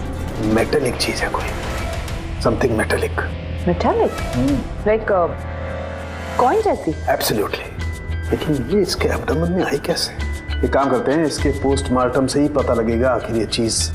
मेटेलिक चीज है कोई, something metallic. Metallic like coin जैसी? एब्सोल्युटली। लेकिन ये इसके एब्डोमेन में आई कैसे? एक काम करते हैं, इसके पोस्टमार्टम से ही पता लगेगा आखिर ये चीज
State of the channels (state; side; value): identical; both; correlation 1.00